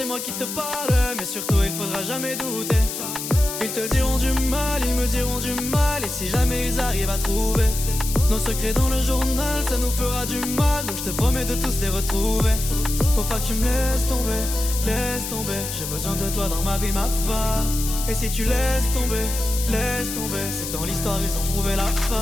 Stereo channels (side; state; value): left; noise; hiss, 6 dB below the sound